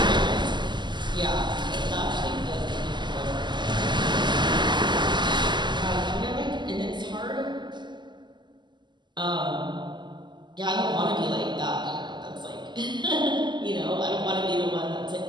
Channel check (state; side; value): late; left; 0.21 ms